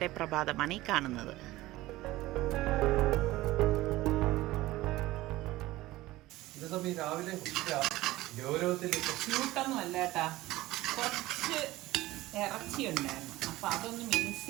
പ്രഭാതമാണ് ഈ കാണുന്നത്. രാവിലെ ക്യൂട്ടൊന്നും അല്ല കേട്ടാ, കുറച്ച് ഇറച്ചി ഉണ്ടായിരുന്നു. അപ്പം അതൊന്ന് മിക്സ്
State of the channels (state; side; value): quieter; left; 17.7 dB